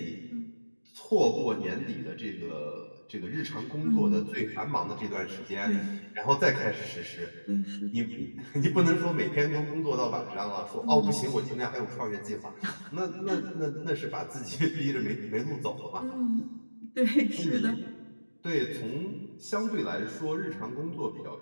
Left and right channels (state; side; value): inverted; both; correlation -1.00